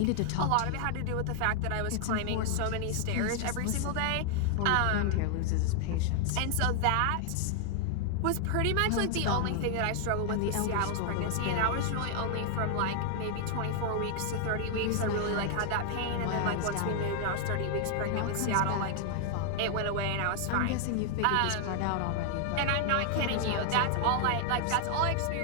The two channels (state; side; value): different; both; correlation 0.00